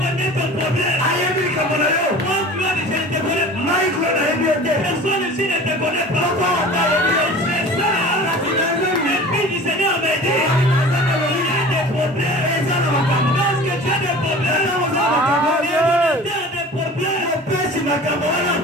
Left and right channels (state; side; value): normal; both; correlation 0.41